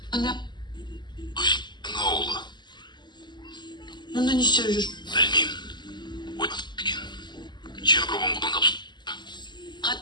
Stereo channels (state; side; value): late; right; 0.21 ms